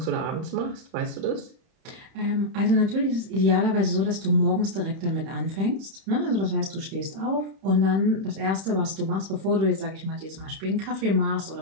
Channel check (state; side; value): late; left; 31 ms